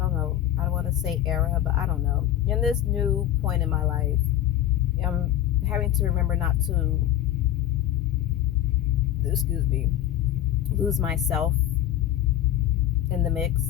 know, I don't want to say era, but I don't know. In this new point in my life, I'm having to remember not to, excuse me, lose myself in the mix.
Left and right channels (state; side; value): quieter; right; 11.9 dB